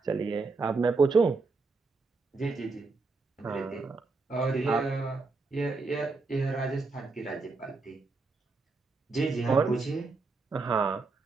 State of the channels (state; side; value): quieter; left; 3.9 dB